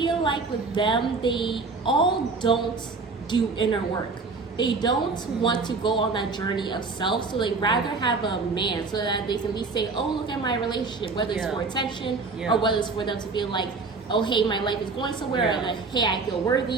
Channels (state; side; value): quieter; left; 4.2 dB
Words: like with them, they all don't do inner work. They don't want to go on that journey of self, so they rather have a man so that they can be saying, "Oh, look at my relationship," whether it's for attention or whether it's for them to feel like, "Oh, hey, my life is going somewhere," or like, "Hey, I feel